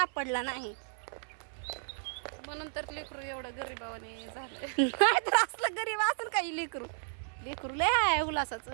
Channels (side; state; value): left; silent; 56 dB below the other